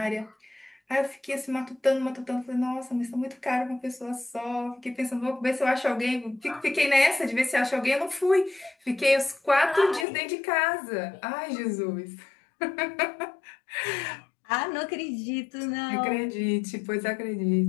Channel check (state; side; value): drops out; right; at 10.1 s